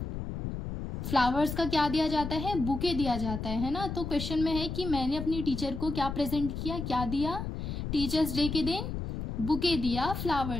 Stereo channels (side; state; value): left; noise; rumble, 5 dB below the sound